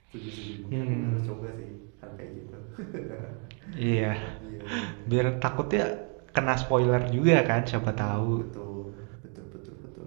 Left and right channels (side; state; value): left; quieter; 39.8 dB